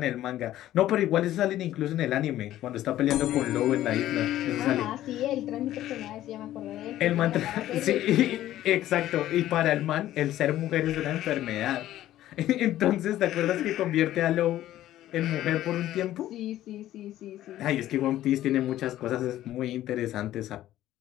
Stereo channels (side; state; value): right; quieter; 13.6 dB